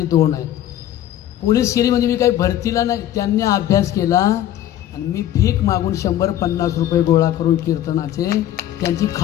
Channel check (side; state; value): right; quieter; 12.2 dB